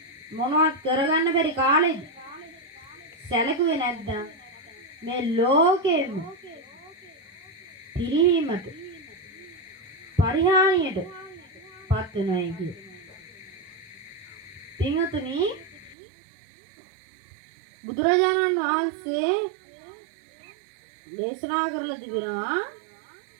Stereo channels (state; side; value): drops out; left; at 16.0 s